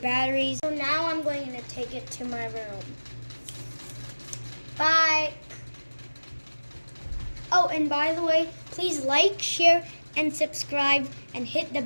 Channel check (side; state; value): both; inverted; correlation -1.00